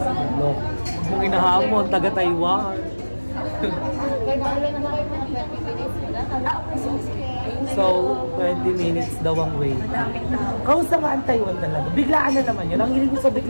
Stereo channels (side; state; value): both; inverted; correlation -1.00